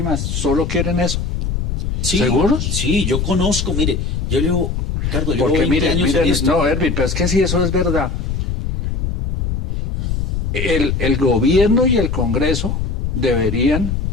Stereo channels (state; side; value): noise; left; rumble, 1 dB below the sound